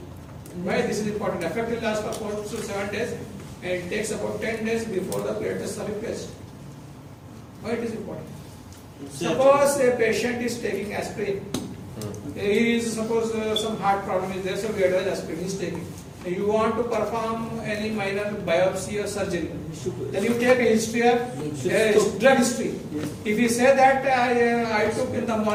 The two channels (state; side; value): identical; both; correlation 1.00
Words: Why this is important? Effect will last for 4 to 7 days and it takes about 10 days before the platelets are replaced. Why it is important? Suppose a patient is taking aspirin. He is suppose some heart problem is there, so we advise aspirin he is taking. You want to perform any minor biopsy or surgery, then you take a history of drug history. If you say that I took in the